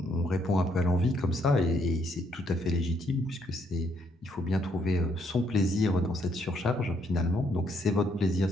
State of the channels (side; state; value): both; normal; correlation 0.71